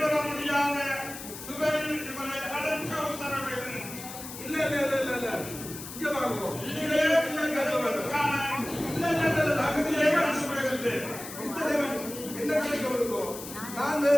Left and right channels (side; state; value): left; noise; hiss, 11 dB below the sound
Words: முடியாத சிறையில் இவரை அடைக்க உத்தரவிடு. இல்ல இல்ல இல்ல இல்ல இல்ல இங்க வாங்க. என்ன கிடைக்க வருவோம்? நான்